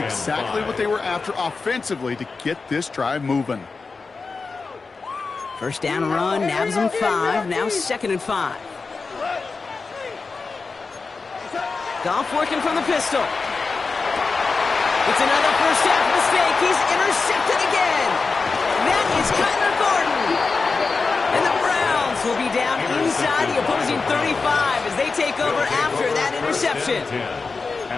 what they were after offensively to get this drive moving. 1st down run, nabs him 5. Now 2nd and 5. Goff working from the pistol. It's another first half mistake. He's intercepted again. That is Kyler Gordon. And the Browns will be down inside the opposing 35 as they take over after that interception.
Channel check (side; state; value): right; quieter; 4.4 dB